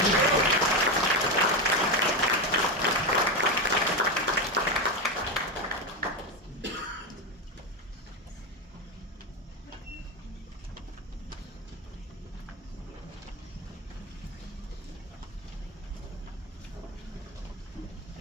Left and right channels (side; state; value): both; normal; correlation 0.13